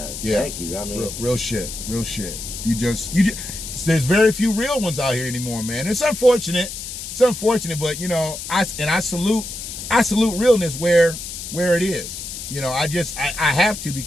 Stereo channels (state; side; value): noise; left; hiss, 8 dB below the sound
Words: Yeah. Thank you. I mean, real shit. You just there's very few real ones out here anymore, man. It's unfortunate. But you know, I salute realness where it is. You know, I have to,